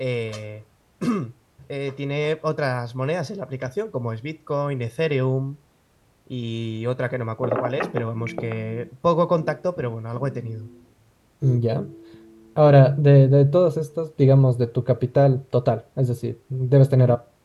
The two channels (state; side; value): identical; both; correlation 1.00